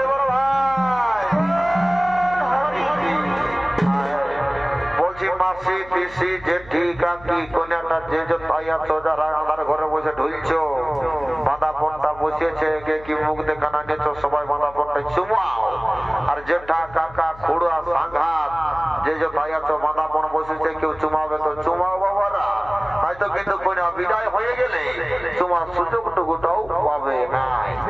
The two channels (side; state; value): left; noise; hum, 20 dB below the sound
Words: বল ভাই। বলছি মাসি পিসি জেঠি কাকি কোনটা যে যে ভাই আছো, যারা আমার ঘরে বসে ঢুলছো, বাঁধা ফোনটা বসিয়েছে, কে কি মুখ দেখানা গেছো, সবাই বাঁধা ফোনটা চুমাও। আর জেঠা কাকা খুড়া সাংঘাত যে যে ভাই আছো, বাঁধা ফোন বসেছে, কেউ চুমাবে তো চুমাও বাবারা, হয়তো কিন্তু কোন গেলে তোমার সুযোগটুকুটাও পাবে না।